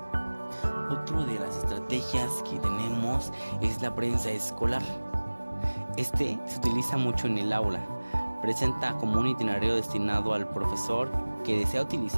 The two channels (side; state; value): both; inverted; correlation -1.00